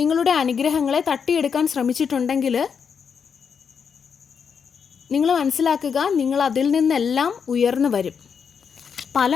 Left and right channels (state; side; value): quieter; right; 6.6 dB